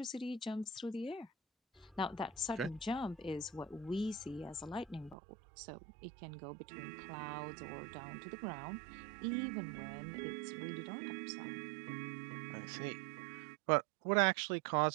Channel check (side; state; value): left; drops out; at 5.2 s